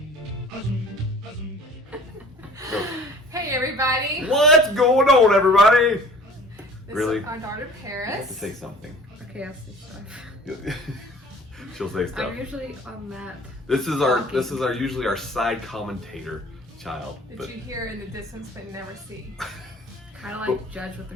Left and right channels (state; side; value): normal; both; correlation 0.47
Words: Hey everybody. What's going on, everybody? This Really? is our daughter Parris. You have to say something. Okay, I'll say stuff. She'll say stuff. I'm usually on that. This is our usually our side commentator child. That you hear in the distance but never see. Kind of like judge what